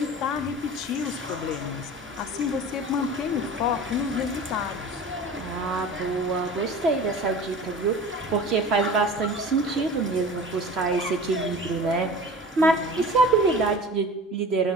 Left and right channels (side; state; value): both; normal; correlation 0.38